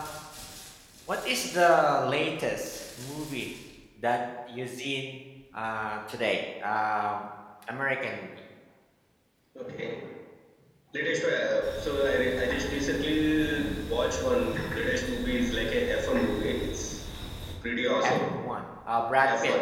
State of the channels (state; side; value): identical; both; correlation 1.00